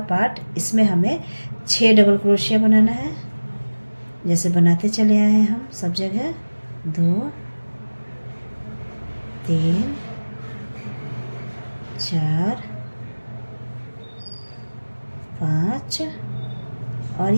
पार्ट, इसमें हमें 6 डबल क्रोशिया बनाना है। जैसे बनाते चले आए हैं हम सब जगह, 2 3 4 5 और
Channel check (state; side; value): inverted; both; correlation -1.00